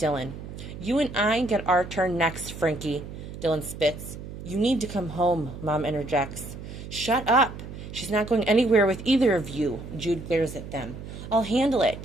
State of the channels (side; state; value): right; noise; hum, 11 dB below the sound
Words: You and I get our turn next, Frankie. Dylan spits. You need to come home, Mom interjects. Shut up. She's not going anywhere with either of you. Jude glares at them. I'll handle